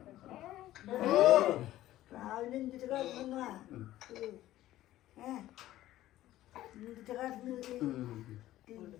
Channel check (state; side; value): quieter; right; 14.6 dB